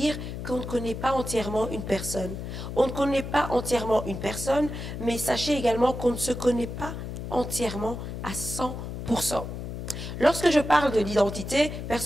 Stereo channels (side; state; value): left; noise; hum, 7 dB below the sound